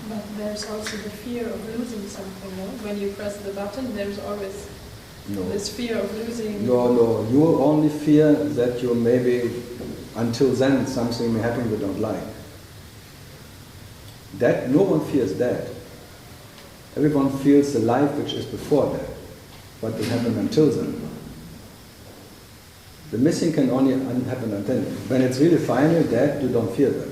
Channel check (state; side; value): identical; both; correlation 1.00